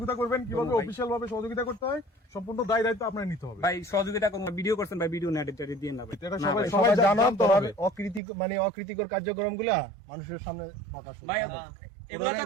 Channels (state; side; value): drops out; left; at 8.2 s